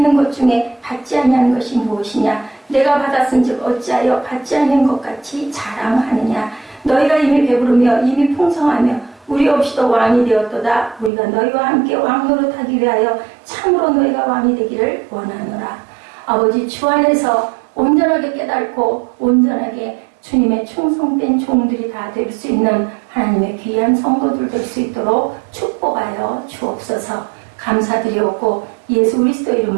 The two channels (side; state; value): left; drops out; at 11.1 s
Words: 것 중에 받지 아니하는 것이 무엇이냐? 내가 받았은즉 어찌하여 받지 아니한 것 같이 자랑하느냐? 너희가 이미 배부르며 이미 풍성하며 우리 없이도 왕이 되었도다. 우리가 너희와 함께 왕노릇하기 위하여 참으로 너희가 왕이 되기를 원하노라. 아버지 주 안에서 온전하게 깨닫고 온전하게 주님의 충성된 종들이 다 될 수 있는 하나님의 귀한 성도들 될 수 있도록 축복하여 주옵소서. 감사드리옵고 예수 그리스도